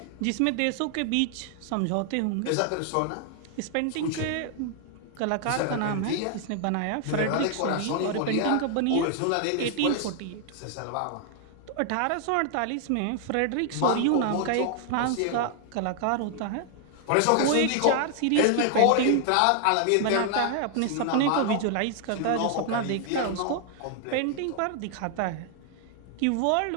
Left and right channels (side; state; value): both; different; correlation 0.00